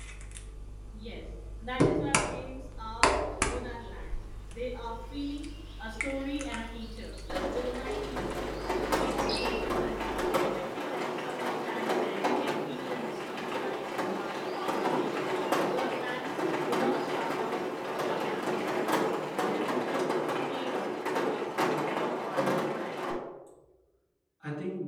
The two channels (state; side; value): identical; both; correlation 1.00